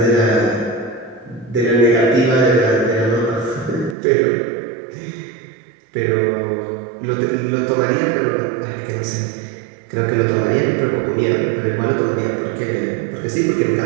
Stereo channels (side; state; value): left; drops out; at 4.0 s